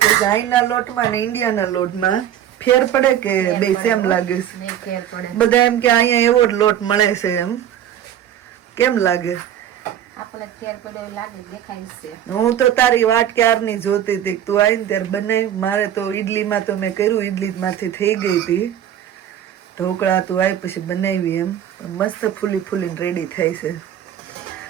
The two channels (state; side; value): quieter; left; 10.6 dB